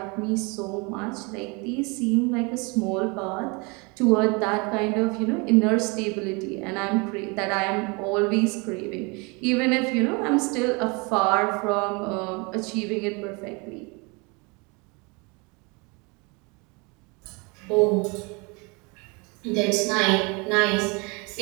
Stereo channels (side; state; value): left; quieter; 29.3 dB